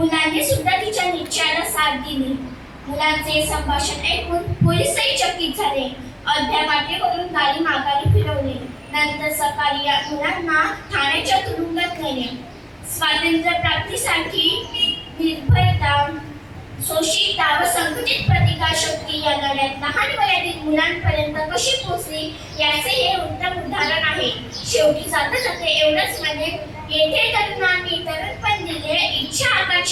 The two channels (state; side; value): identical; both; correlation 1.00